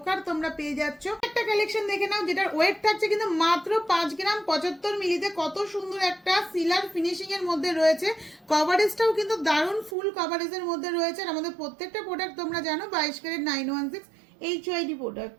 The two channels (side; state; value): left; drops out; at 10.0 s